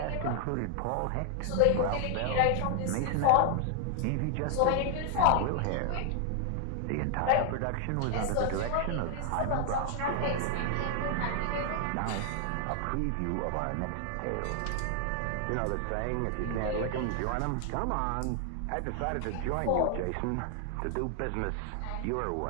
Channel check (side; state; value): both; different; correlation 0.00